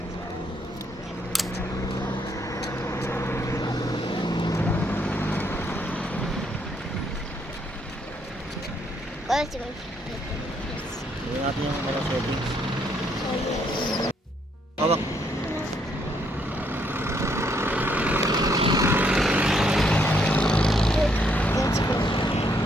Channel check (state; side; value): normal; both; correlation 0.72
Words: Tingnan natin yung mga settings. Hawak.